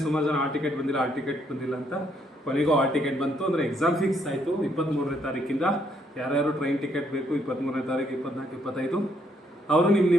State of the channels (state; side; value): normal; both; correlation 0.71